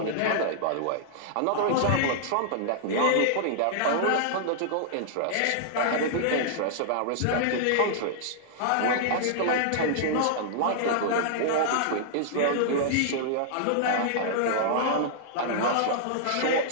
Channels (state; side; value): different; both; correlation -0.01